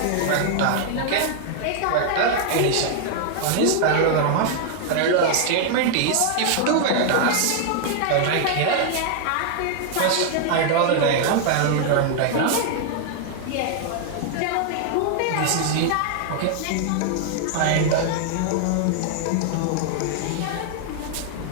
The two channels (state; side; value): different; both; correlation 0.00